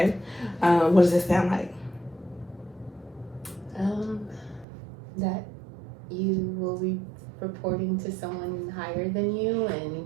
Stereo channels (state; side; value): drops out; left; at 4.7 s